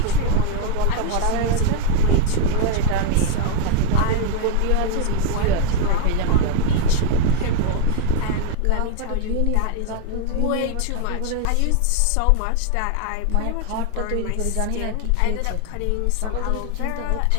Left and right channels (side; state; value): both; different; correlation 0.01